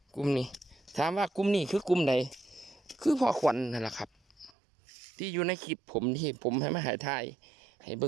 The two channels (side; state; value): left; drops out; at 4.5 s